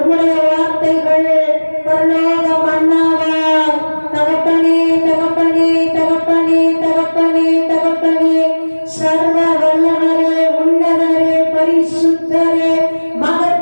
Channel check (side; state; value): both; inverted; correlation -1.00